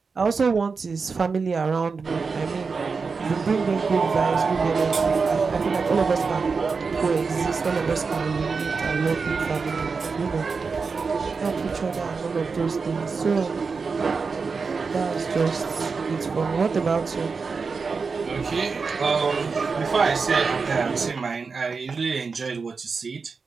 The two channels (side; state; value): left; quieter; 4.8 dB